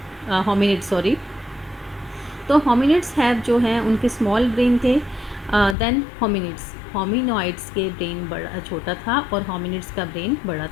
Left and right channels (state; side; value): drops out; right; at 5.8 s